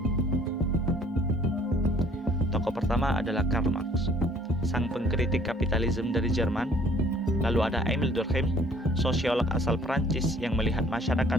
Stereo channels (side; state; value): both; normal; correlation 0.57